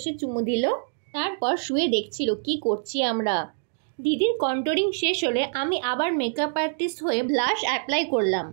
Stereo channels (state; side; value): silent; left; digital silence